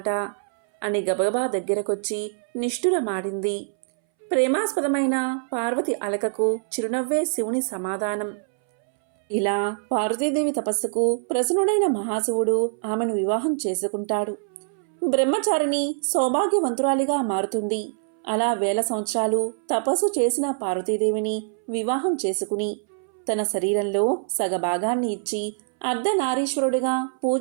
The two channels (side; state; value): left; silent; 62 dB below the other